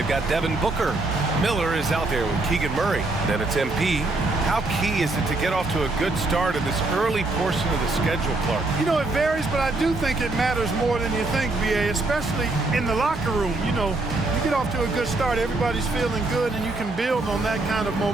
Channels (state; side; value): quieter; left; 3.1 dB